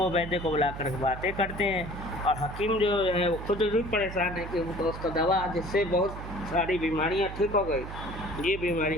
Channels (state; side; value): noise; right; hum, 9 dB below the sound